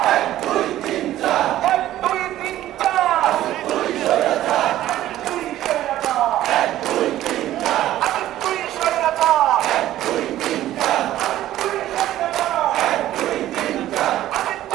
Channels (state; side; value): quieter; left; 13.7 dB